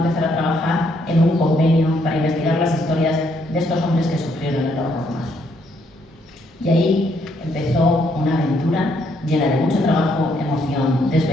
a trabajar en un convenio para investigar las historias de estos hombres que sufrieron el horror más. Y ahí empezó una aventura llena de mucho trabajo, emoción,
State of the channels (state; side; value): normal; both; correlation 0.72